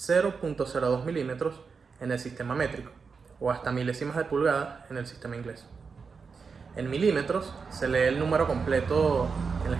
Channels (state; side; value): quieter; left; 5.3 dB